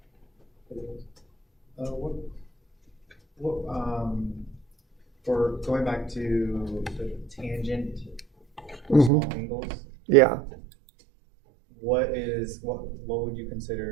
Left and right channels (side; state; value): left; drops out; at 9.1 s